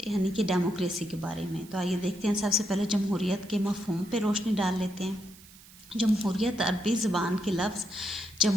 यानी कि डेमोक्रेसी के बारे में। तो आइए देखते हैं, सबसे पहले जमहूरियत के मफ़हूम पे रोशनी डाल लेते हैं। जमहूरियत अरबी ज़बान के लफ्ज़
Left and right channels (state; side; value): noise; right; hiss, 22 dB below the sound